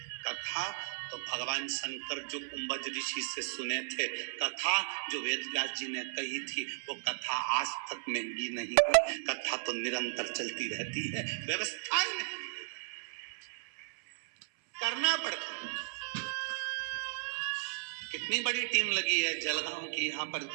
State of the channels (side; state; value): left; silent; 54 dB below the other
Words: कथा तो भगवान शंकर जो कुंभज ऋषि से सुने थे, कथा जो वेदव्यास जी ने कही थी, वो कथा आज तक महंगी नहीं है। कथा तो निरंतर चलती रहती है, व्यवस्थाएं नहीं करना पड़ता है। कितनी बड़ी टीम लगी है जलगांव की, यहाँ पर